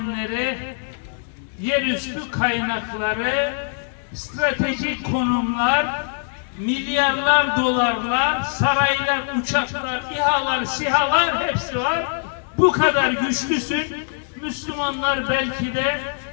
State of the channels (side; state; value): right; silent; digital silence